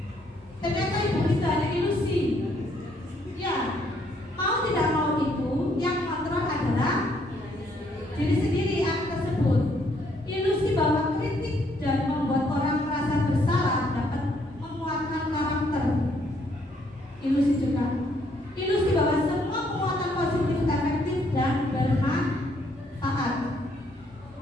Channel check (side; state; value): both; normal; correlation 0.69